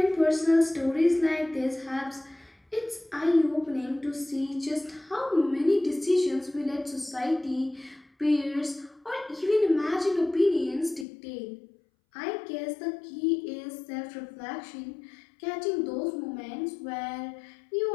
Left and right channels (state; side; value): drops out; right; at 11.1 s